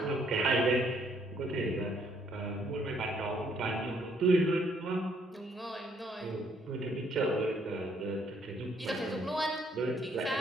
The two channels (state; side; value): normal; both; correlation 0.68